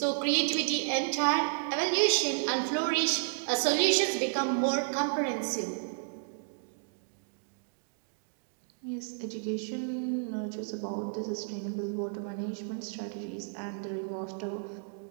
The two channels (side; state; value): left; silent; digital silence